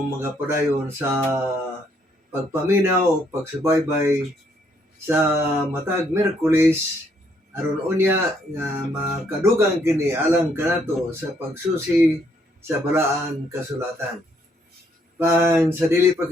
mga padayon sa pagpaminaw o pagsubaybay sa matag Miyerkules aron unya nga makadugang kini alang kanato sa pagsusi sa balaan kasulatan. Sa dili pa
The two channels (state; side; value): normal; both; correlation 0.70